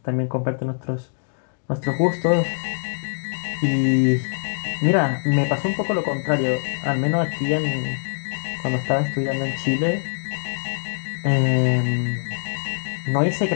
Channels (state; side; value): silent; right; digital silence